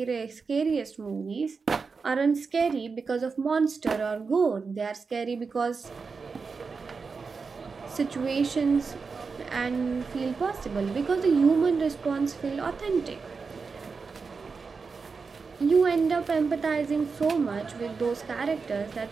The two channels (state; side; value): quieter; left; 4.9 dB